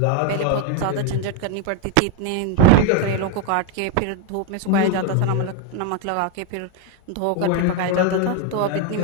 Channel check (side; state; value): both; different; correlation 0.01